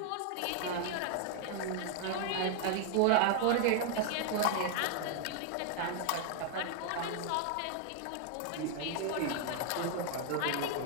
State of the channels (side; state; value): both; different; correlation 0.00